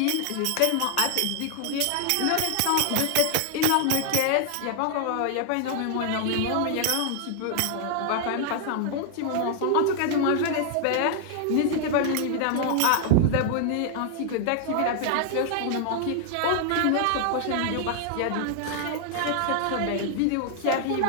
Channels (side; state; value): both; different; correlation 0.00